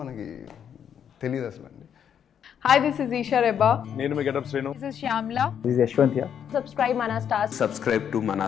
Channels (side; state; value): right; quieter; 8.5 dB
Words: మనకి తెలియదు అసలు అండి. Hi, this is Isha Reba. నేను మీ Getup Srinu. This is Shyamla. This is Yashwant here. Subscribe Mana Stars. Subscribe to